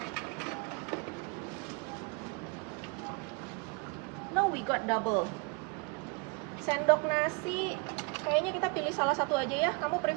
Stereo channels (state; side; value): quieter; left; 31.3 dB